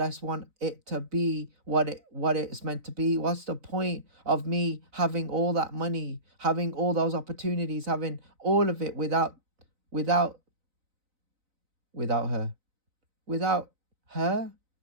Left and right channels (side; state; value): left; late; 4.0 ms